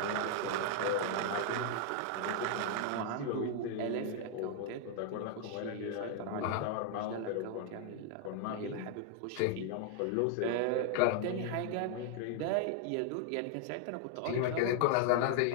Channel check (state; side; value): different; both; correlation 0.00